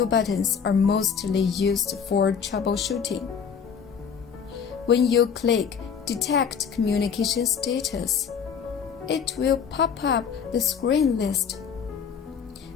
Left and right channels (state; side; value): quieter; right; 6.9 dB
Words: buttons are mostly used for troubleshooting. When you click Detect Communication Status, it will pop up the screen list.